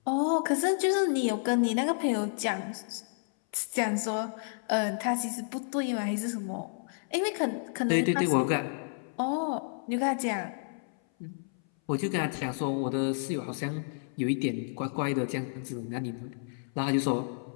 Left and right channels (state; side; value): silent; right; 57 dB below the other